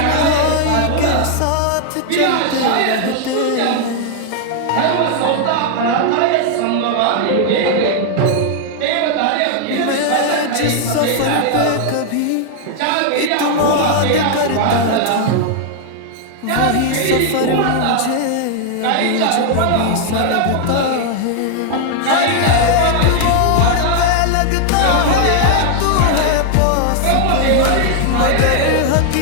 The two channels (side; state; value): both; different; correlation 0.00